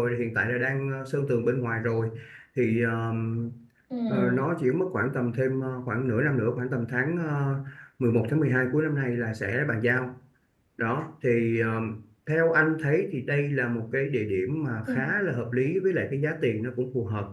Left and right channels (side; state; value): both; identical; correlation 1.00